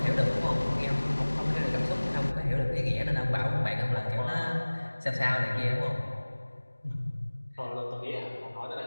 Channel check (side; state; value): both; inverted; correlation -1.00